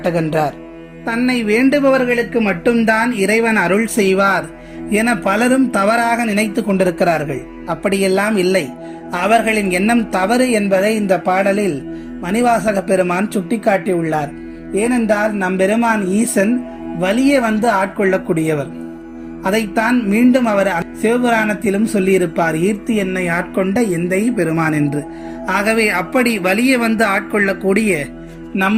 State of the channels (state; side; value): identical; both; correlation 1.00